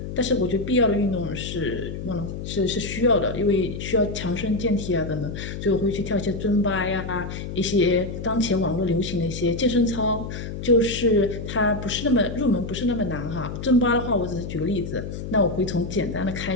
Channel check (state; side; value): noise; left; hum, 7 dB below the sound